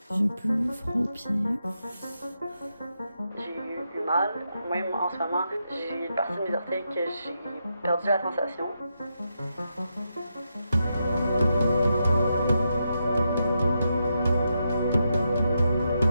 J'ai plus froid aux pieds. J'ai eu mal, même en ce moment, j'ai une partie de mes orteils que j'ai perdu la sensation.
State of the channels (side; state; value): both; inverted; correlation -0.84